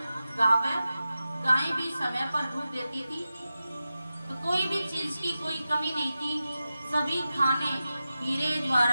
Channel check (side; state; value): both; inverted; correlation -0.93